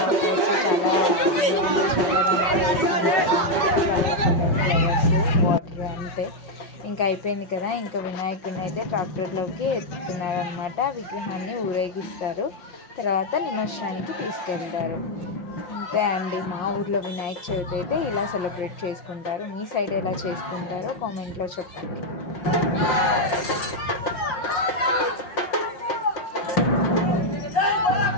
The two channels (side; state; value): right; late; 5.6 ms